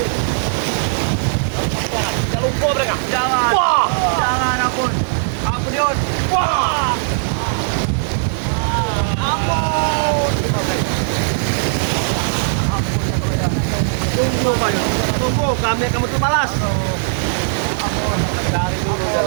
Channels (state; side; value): silent; left; digital silence